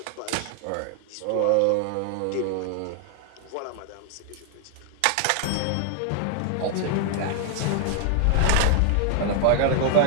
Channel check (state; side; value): different; both; correlation 0.00